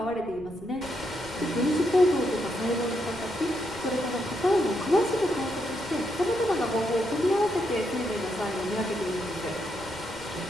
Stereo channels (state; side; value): noise; right; rumble, 19 dB below the sound